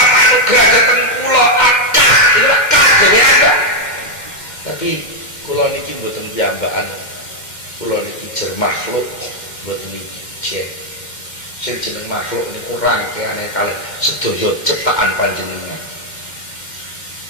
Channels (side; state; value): right; late; 2.1 ms